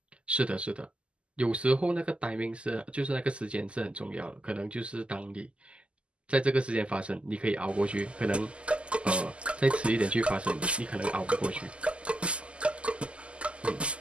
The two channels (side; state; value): left; late; 0.054 ms